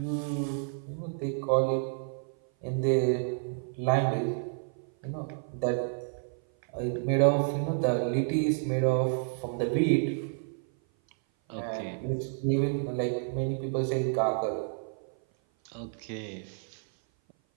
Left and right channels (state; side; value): silent; left; 56 dB below the other